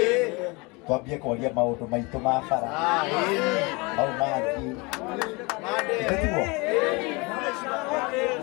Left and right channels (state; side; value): quieter; right; 27.0 dB